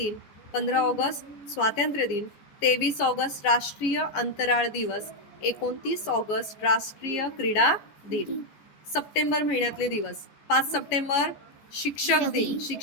15 ऑगस्ट स्वातंत्र्य दिन. 23 ऑगस्ट राष्ट्रीय अंतराळ दिवस. 29 ऑगस्ट राष्ट्रीय क्रीडा दिन. सप्टेंबर महिन्यातले दिवस. 5 सप्टेंबर शिक्षक दिन.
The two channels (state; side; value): late; right; 14 ms